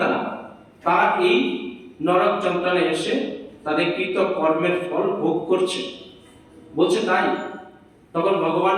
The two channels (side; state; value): both; identical; correlation 1.00